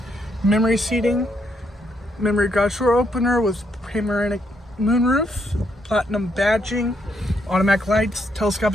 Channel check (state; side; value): normal; both; correlation 0.75